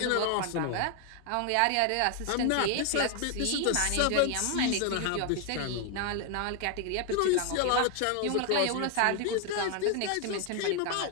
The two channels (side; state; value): both; different; correlation 0.01